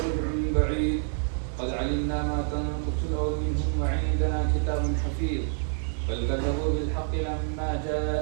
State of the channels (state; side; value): silent; left; 60 dB below the other